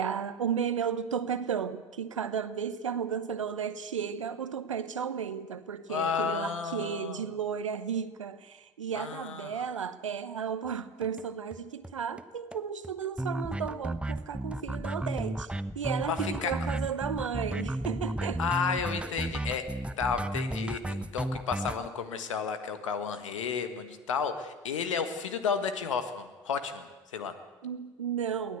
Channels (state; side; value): normal; both; correlation 0.30